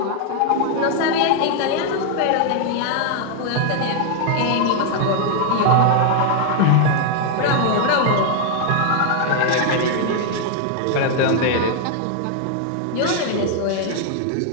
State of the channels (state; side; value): different; both; correlation 0.00